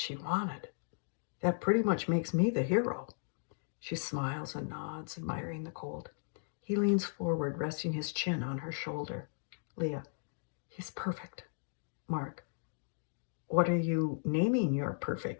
wanted. That pretty much makes me the hero. She smiles and nods, admiring the colt. He leans forward, resting his chin on her shoulder. Leah, he's perfect. Mark, what are you naming your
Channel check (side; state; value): right; silent; digital silence